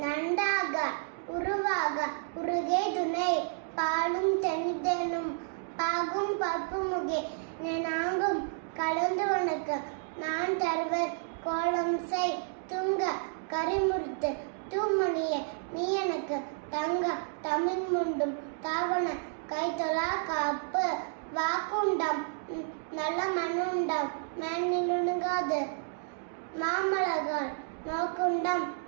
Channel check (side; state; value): left; silent; digital silence